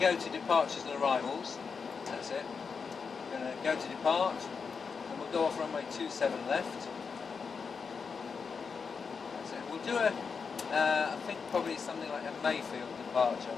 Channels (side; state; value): right; quieter; 5.5 dB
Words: to departures and arrivals, that's it. We're going to go to depart, and we're we'll go off runway 27 left. That's it. We'll do a, I think probably something like a Mayfield departure.